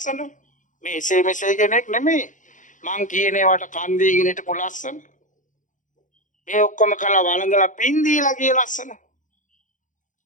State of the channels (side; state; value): right; late; 0.37 ms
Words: මේ එසේ මෙසේ කෙනෙක් නෙමෙයි. මං කියන ඒවාට කන් දීගෙන හිටපු ලස්සන. මේ ඔක්කොම කළා වළඳලා පින් දීලා ගිය ලස්සන.